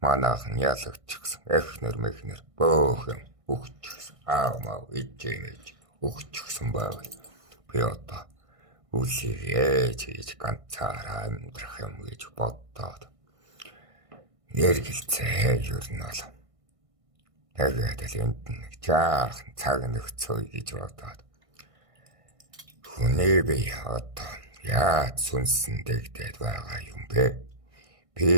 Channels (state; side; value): late; left; 1.6 ms